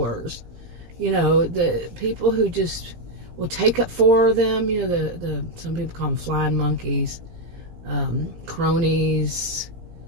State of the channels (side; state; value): left; late; 17 ms